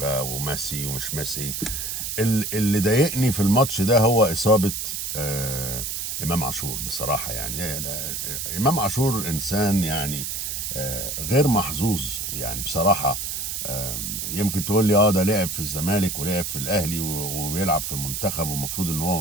وميسي ومش ميسي. اللي ضايقني في الماتش ده هو اصابه امام عاشور بصراحه. يعني امام عاشور انسان يعني غير محظوظ يعني بصراحه. يمكن تقول لي ده لعب في الزمالك ولعب في الاهلي وبيلعب في المنتخب ومفروض ان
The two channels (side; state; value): right; noise; hiss, 4 dB below the sound